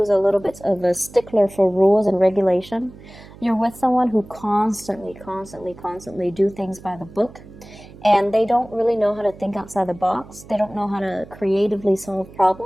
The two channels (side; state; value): right; noise; hum, 19 dB below the sound